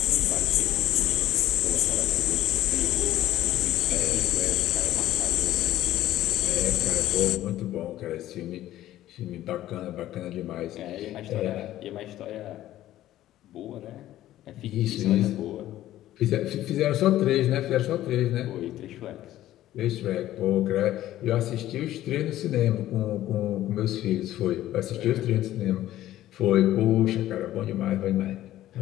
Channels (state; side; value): quieter; right; 13.9 dB